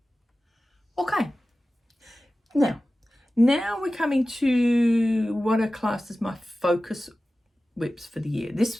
Okay. Now we're coming to what are classed as my focus whips for the year.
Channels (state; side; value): normal; both; correlation 0.95